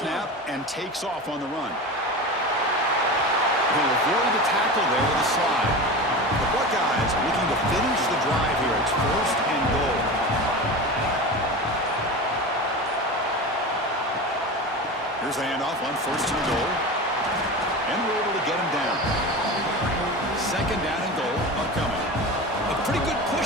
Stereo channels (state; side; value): normal; both; correlation 0.28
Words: and takes off on the run. He'll avoid the tackle there with a slide. The Buckeyes looking to finish the drive here. It's 1st and goal. Here's the handoff on 1st and goal. And we're able to get him down. 2nd down and goal upcoming. A pretty good